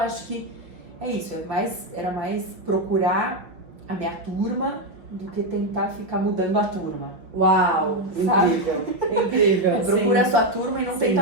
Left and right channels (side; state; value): left; late; 6.2 ms